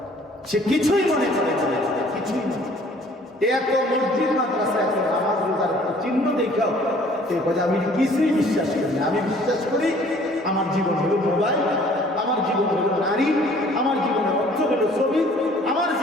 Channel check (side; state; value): both; normal; correlation 0.55